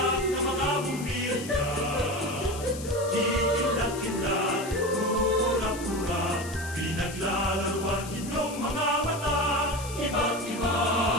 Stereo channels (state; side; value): noise; left; hiss, 13 dB below the sound